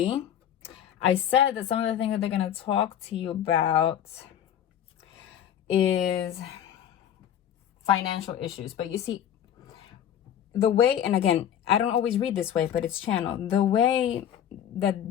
I said that some of the things that they're going to talk to you about is financial issues. But you see, the way, and again, I don't always read this way, but it's channeled. The way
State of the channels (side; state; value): right; quieter; 10.0 dB